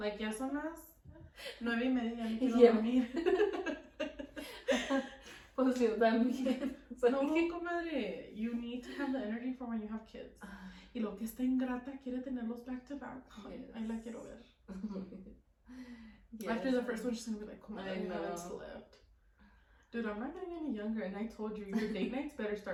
ya son las 9:30, ya me quiero dormir. Pues yo también. No, comadre, you need to have the energy for when you have kids. Y lo que está ingrata quiere tenerlos back to back. Yes. Ahí la quiero ver. Yes. After the first one, she's gonna be like, comadre, I haven't slept. Dude, I'm not getting any younger, and I told you, your date nights better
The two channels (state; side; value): identical; both; correlation 1.00